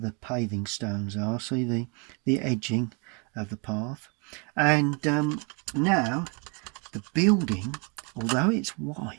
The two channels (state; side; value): quieter; left; 33.8 dB